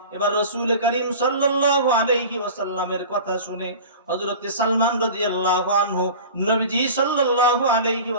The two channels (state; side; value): inverted; both; correlation -0.37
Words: এবার রাসূল করিম সাল্লাল্লাহু আলাইহি ওয়াসাল্লামের কথা শুনে হযরত সালমান রাদিয়াল্লাহু আনহু নবীজি সাল্লাল্লাহু আলাইহি